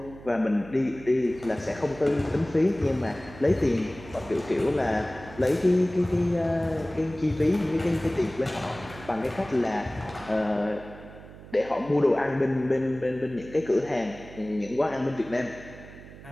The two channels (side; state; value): right; noise; hum, 17 dB below the sound